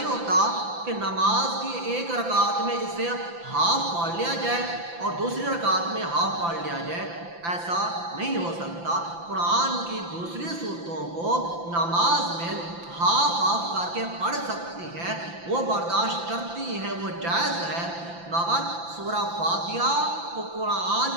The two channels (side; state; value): left; late; 5.9 ms